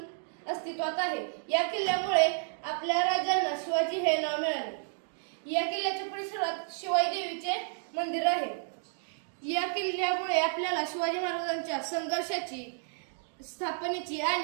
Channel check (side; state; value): left; silent; digital silence